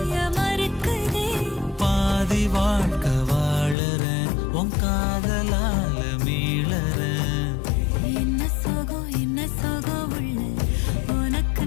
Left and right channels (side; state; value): right; drops out; at 3.8 s